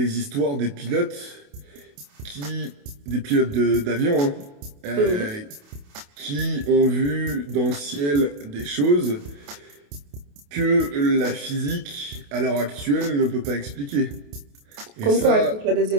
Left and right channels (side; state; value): left; late; 28 ms